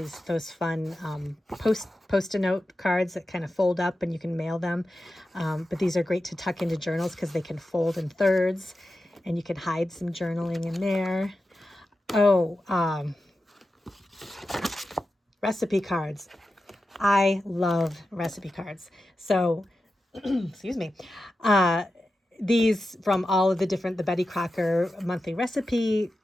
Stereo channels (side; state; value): both; normal; correlation 0.92